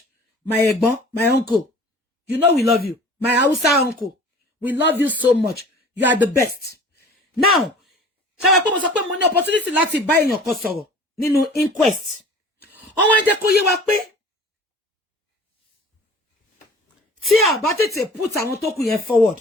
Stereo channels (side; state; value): both; normal; correlation 0.44